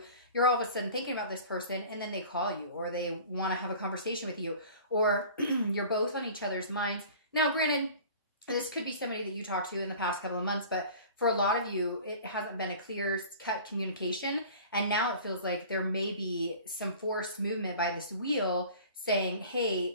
you're all of a sudden thinking about this person and then they call you, or they want to have a conversation with you, or you're both on each other's minds. Now, granted, this could be somebody that you talked to in the past couple of months, but for a lot of you, it hasn't been a clear-cut communication. And now it feels like there may be some forced movement by this wheel saying,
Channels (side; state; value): both; inverted; correlation -0.43